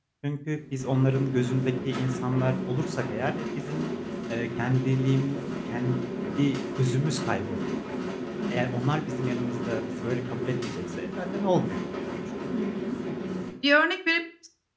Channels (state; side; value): identical; both; correlation 1.00